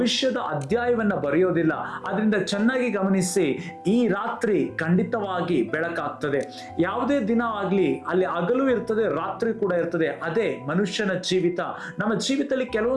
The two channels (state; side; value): identical; both; correlation 1.00